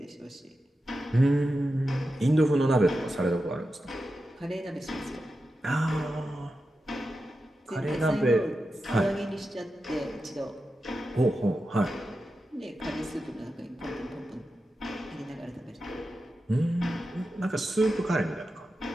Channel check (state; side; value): normal; both; correlation 0.90